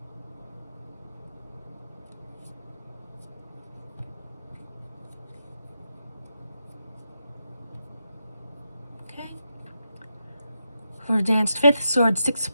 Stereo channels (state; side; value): inverted; both; correlation -0.85